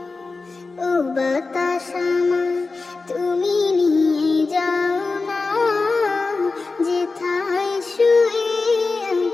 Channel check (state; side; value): quieter; right; 3.9 dB